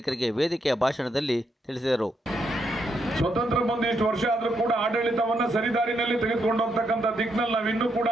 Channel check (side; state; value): both; normal; correlation 0.79